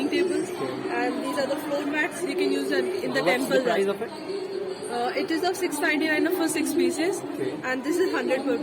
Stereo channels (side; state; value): both; identical; correlation 1.00